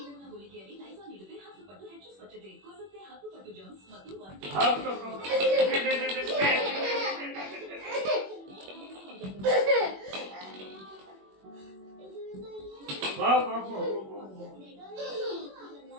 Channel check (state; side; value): late; left; 21 ms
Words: ಗುಳಿಗೆಯಲ್ಲಿ ಲೈಸಾಲ್ ನೀಡಿದ್ರೆ 10 ಪಟ್ಟು ಹೆಚ್ಚು ಸ್ವಚ್ಛತೆ ಕೊಲ್ಲುತ್ತೆ, 10 ಪಟ್ಟು ಜರ್ಮ್ಸ್ ಮತ್ತು